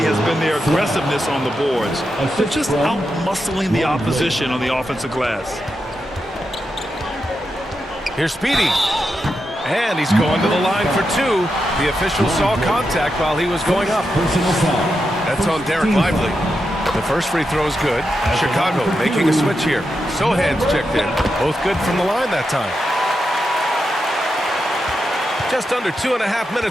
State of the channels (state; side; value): normal; both; correlation 0.87